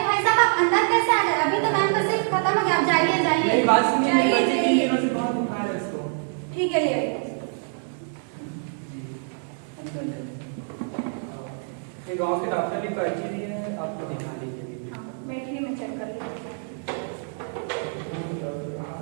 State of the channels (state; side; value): silent; left; 61 dB below the other